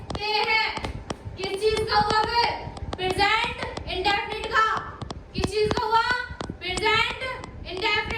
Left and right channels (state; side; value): identical; both; correlation 1.00